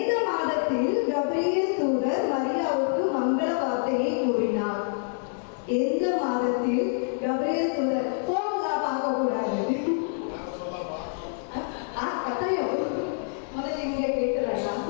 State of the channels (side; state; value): right; silent; 60 dB below the other